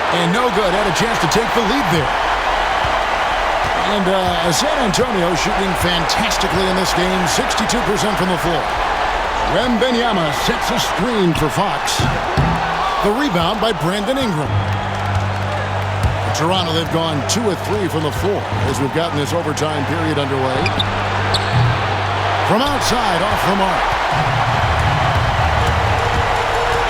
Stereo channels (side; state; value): both; identical; correlation 1.00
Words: And no good. Had a chance to take the lead there. And San Antonio shooting fantastically in this game. 62% from the floor. Wembanyama sets a screen for Fox. The rebound by Brandon Ingram. Toronto, they've gone 2 of 3 from the floor as we've gotten this overtime period underway. From outside, off the mark.